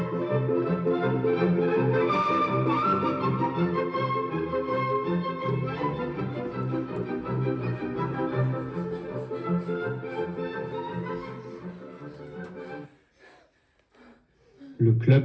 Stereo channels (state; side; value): identical; both; correlation 1.00